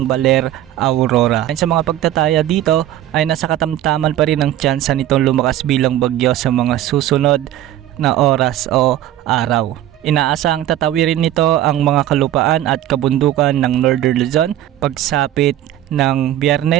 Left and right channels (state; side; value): quieter; left; 12.8 dB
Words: Baler, Aurora. Sa mga pagtataya dito ay nasa katamtaman pa rin ang tsansa nitong lumakas bilang bagyo sa mga susunod na oras o araw. Inaasahang tatawirin nito ang mga kalupaan at kabundukan ng Northern Luzon pagsapit ng